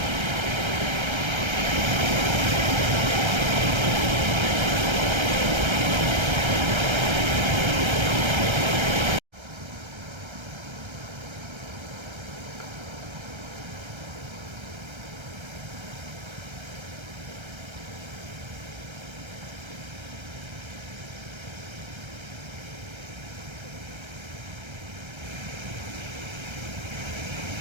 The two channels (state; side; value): late; left; 1.3 ms